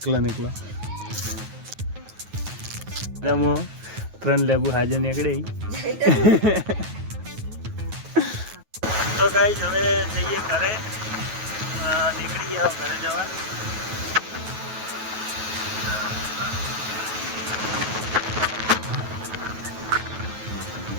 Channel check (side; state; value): left; late; 9.3 ms